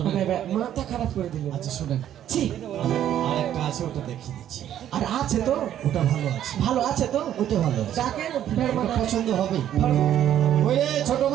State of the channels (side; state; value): left; quieter; 11.0 dB